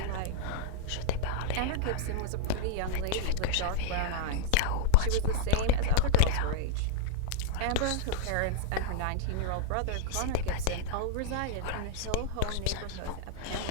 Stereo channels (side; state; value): both; different; correlation -0.01